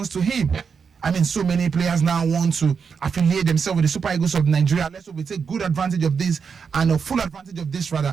to him. I mean, so many players now want to affiliate themselves with the Super Eagles of Nigeria. Let's hope we take good advantage of this and a full advantage of this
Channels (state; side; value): quieter; left; 6.0 dB